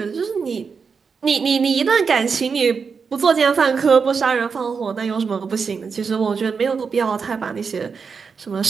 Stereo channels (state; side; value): quieter; left; 5.6 dB